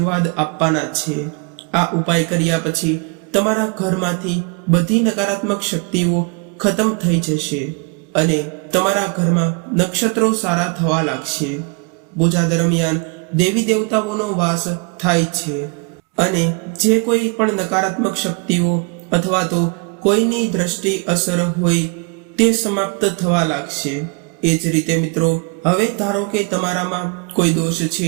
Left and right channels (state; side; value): quieter; left; 33.4 dB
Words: આપવાના છે. આ ઉપાય કર્યા પછી તમારા ઘરમાંથી બધી નકારાત્મક શક્તિઓ ખતમ થઈ જશે અને તમારા ઘરમાં નક્ષત્રો સારા થવા લાગશે. પૂજા દરમિયાન દેવી દેવતાઓનો વાસ થાય છે અને જે કોઈ પણ નકારાત્મક શક્તિઓ અથવા તો કોઈની દ્રષ્ટિ અસર હોય તે સમાપ્ત થવા લાગશે. એ જ રીતે મિત્રો, હવે ધારો કે તમારામાં કોઈ દોષ